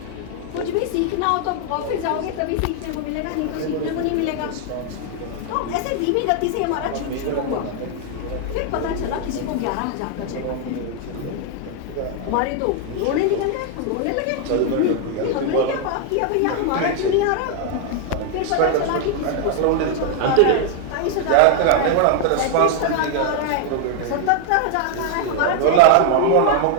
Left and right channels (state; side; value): different; both; correlation 0.00